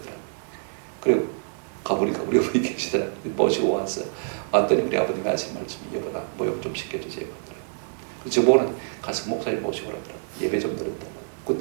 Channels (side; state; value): left; silent; digital silence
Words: 그리고 가보니까 우리 어머니 계시더라고요. 모시고 와서 왔더니 우리 아버님이 하신 말씀이, 여보나 모욕 좀 시켜주세요 하더라고요. 그래서 저보고는 가서 목사님 모시고 오라더라고요. 예배 좀 드렸다고.